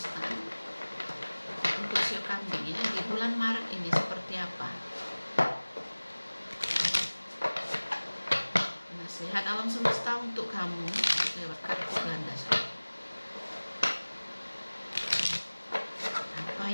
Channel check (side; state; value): both; inverted; correlation -1.00